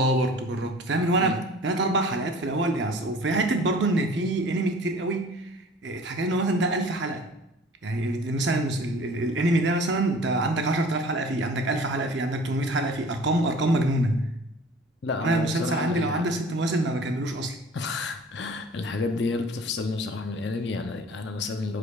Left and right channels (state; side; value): normal; both; correlation 0.46